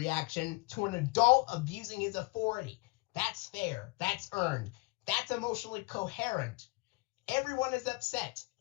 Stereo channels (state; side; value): quieter; right; 25.0 dB